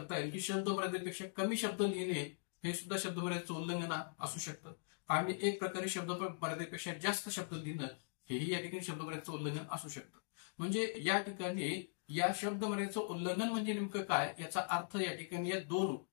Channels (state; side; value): silent; right; digital silence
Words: येईल की शब्द मर्यादेपेक्षा कमी शब्द लिहिणे हे सुद्धा शब्द मर्यादेचं उल्लंघन असू शकतं. आणि एक प्रकारे शब्द मर्यादेपेक्षा जास्त शब्द लिहिणं हेही या ठिकाणी शब्द मर्यादेचं उल्लंघन असू शकतं. म्हणजे या ठिकाणी या शब्द मर्यादेचं उल्लंघन म्हणजे नेमकं काय याचा अर्थ या ठिकाणी या 2